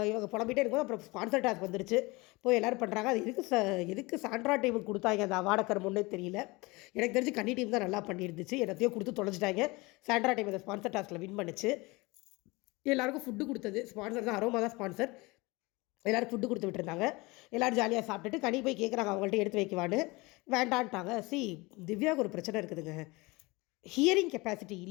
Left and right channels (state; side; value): quieter; right; 23.9 dB